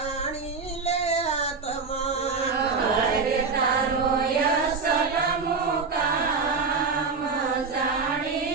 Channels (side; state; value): left; quieter; 4.8 dB